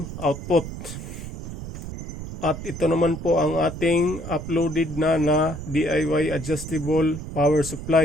output. At ito naman po ang ating uploaded na DIY adjustable power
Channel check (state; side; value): noise; right; rumble, 9 dB below the sound